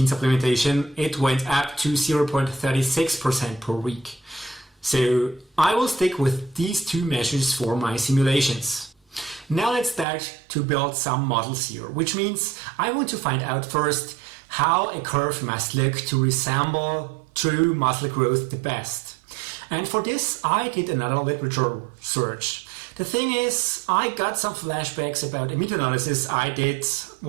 supplementation, it went up to 0.36% per week. So I will stick with these 2 measures for my simulations. Now let's start to build some models here, which means I want to find out first how a curve must look to resemble true muscle growth the best. And for this, I did another literature search. The thing is, I got some flashbacks about a meta-analysis I did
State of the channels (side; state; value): left; drops out; at 10.1 s